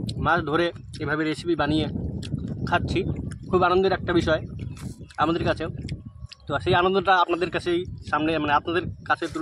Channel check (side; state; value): both; identical; correlation 1.00